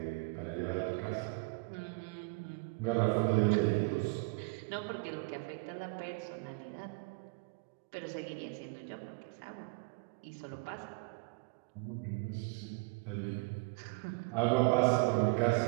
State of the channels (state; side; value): quieter; left; 29.3 dB